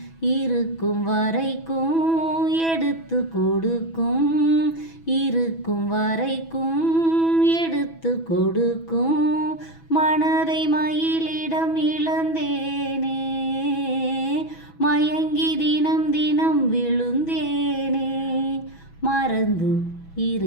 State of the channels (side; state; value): right; late; 6.1 ms